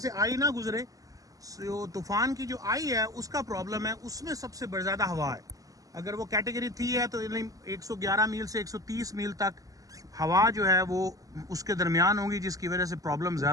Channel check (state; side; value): late; left; 0.17 ms